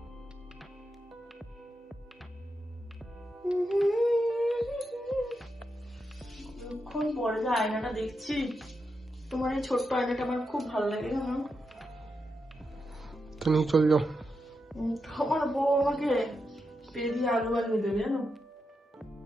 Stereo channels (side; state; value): both; normal; correlation 0.86